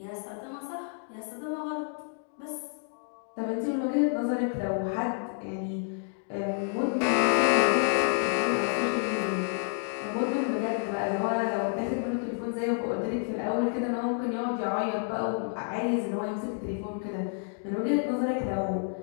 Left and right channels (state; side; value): silent; right; 58 dB below the other